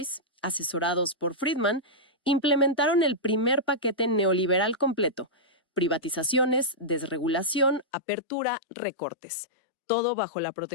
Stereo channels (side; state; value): right; drops out; at 7.9 s